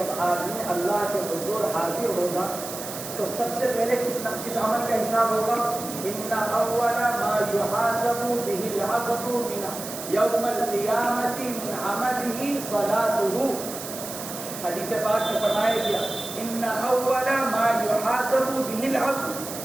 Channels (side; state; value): right; noise; hiss, 9 dB below the sound